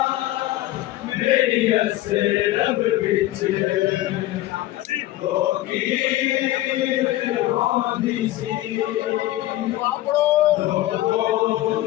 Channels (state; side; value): quieter; right; 15.8 dB